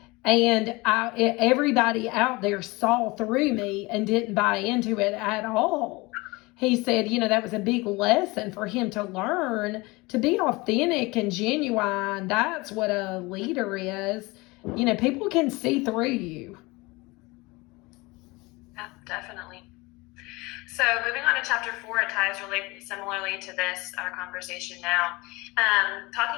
And everybody out there saw through me and didn't buy into it at all. He said, that was a big lesson for him to learn to be authentic and genuine. That's what a leader is. People can see through you. Yeah, definitely. So moving on to chapter 4, it ties really similarly to our conversation now.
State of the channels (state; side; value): quieter; right; 23.6 dB